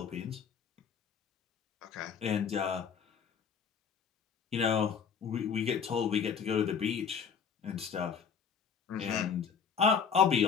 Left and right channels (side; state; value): right; quieter; 6.8 dB